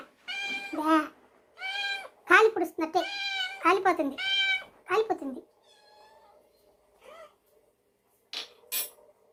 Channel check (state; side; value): identical; both; correlation 1.00